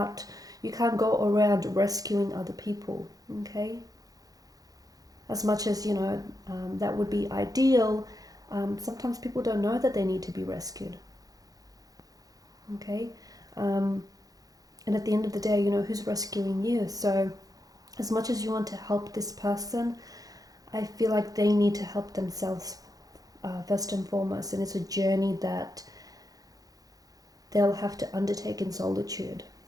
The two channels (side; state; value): left; late; 0.18 ms